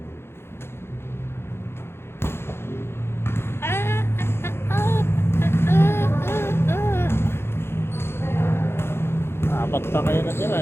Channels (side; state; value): right; late; 0.12 ms